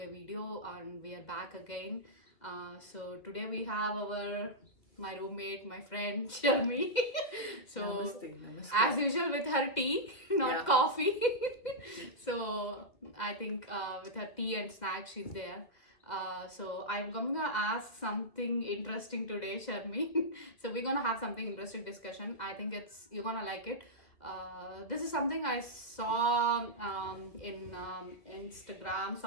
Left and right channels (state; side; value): late; right; 2.0 ms